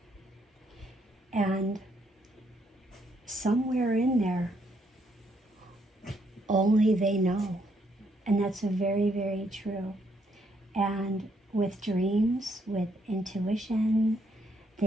And somewhere in there, only they know. And that's very, very true. And with dreams, with intuition,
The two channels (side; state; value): both; normal; correlation 0.73